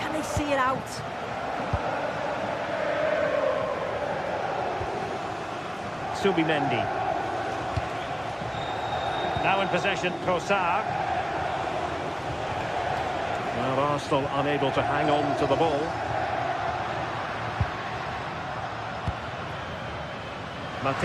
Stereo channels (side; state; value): both; identical; correlation 1.00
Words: they see it out? Subimendi. Now in possession, Trossard. Well, Arsenal unable to hang on to the ball.